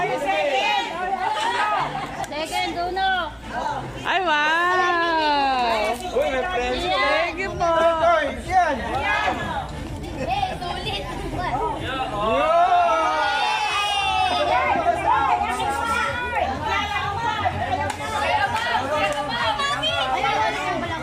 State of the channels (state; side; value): identical; both; correlation 1.00